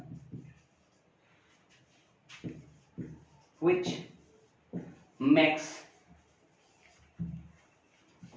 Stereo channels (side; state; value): both; identical; correlation 1.00